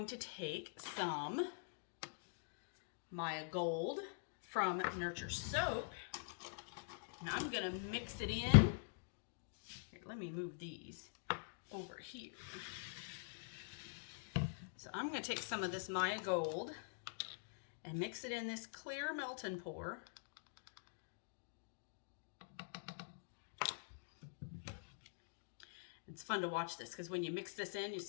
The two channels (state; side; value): silent; right; digital silence